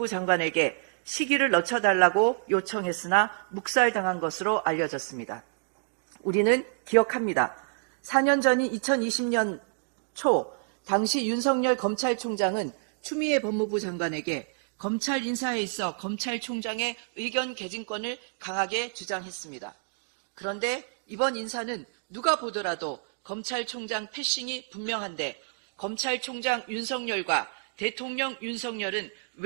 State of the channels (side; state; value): left; silent; 59 dB below the other